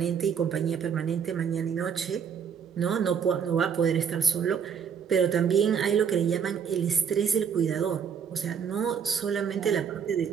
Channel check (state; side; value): quieter; left; 7.2 dB